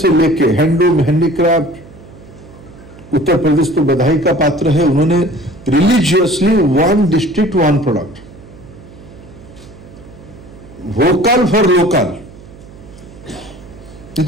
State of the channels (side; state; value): right; noise; hum, 20 dB below the sound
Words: लेके हैंडलूम, हैंडीक्राफ्ट, उत्तर प्रदेश तो बधाई का पात्र है, उन्होंने religiously 1 district 1 product, vocal for local.